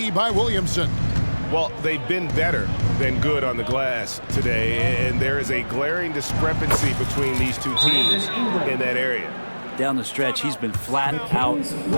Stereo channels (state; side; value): inverted; both; correlation -1.00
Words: by Williamson. Well, they've been better than good on the glass today, and there is a glaring discrepancy between these two teams in that area. Down the stretch, he's been flat out